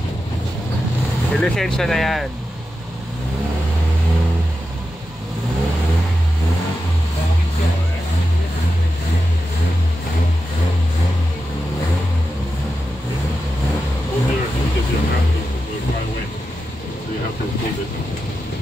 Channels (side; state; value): both; normal; correlation 0.90